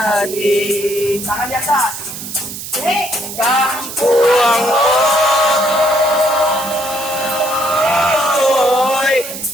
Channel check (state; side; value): noise; right; hiss, 9 dB below the sound